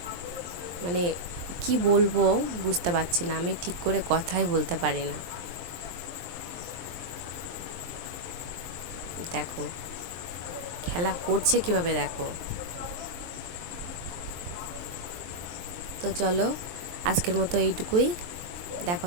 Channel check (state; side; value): late; left; 23 ms